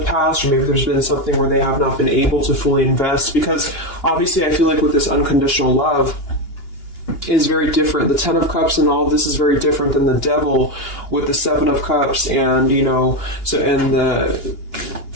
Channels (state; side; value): late; right; 2.9 ms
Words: past, or maybe there's been something where they have not been able to fully invest, because obviously I feel like with this unconditional love is very different. The Ten of Cups and all of this is very different than the Devil with the Seven of Cups, and